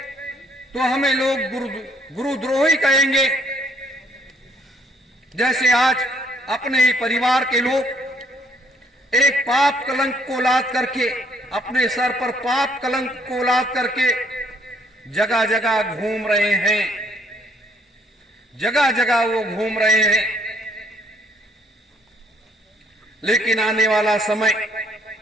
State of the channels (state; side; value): normal; both; correlation 0.65